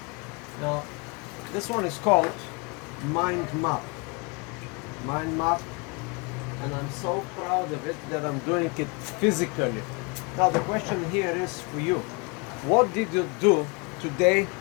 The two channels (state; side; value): quieter; right; 30.0 dB